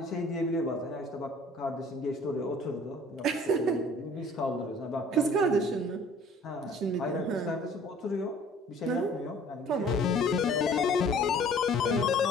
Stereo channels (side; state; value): both; normal; correlation 0.52